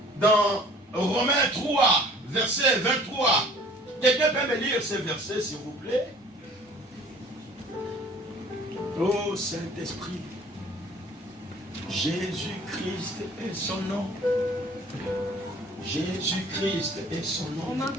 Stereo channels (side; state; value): both; normal; correlation 0.51